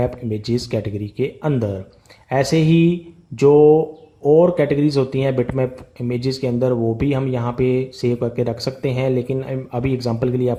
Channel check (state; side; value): identical; both; correlation 1.00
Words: इमेजेस कैटेगरी के अंदर। ऐसे ही जो और कैटेगरीज होती हैं बिटमैप इमेजेस के अंदर, वो भी हम यहाँ पे सेव करके रख सकते हैं। लेकिन अभी एग्जांपल के लिए